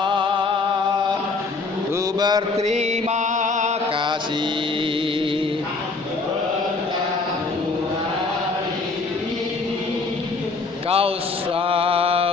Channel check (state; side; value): quieter; right; 3.9 dB